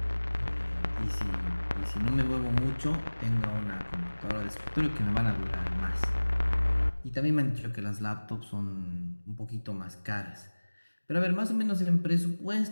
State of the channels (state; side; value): inverted; both; correlation -1.00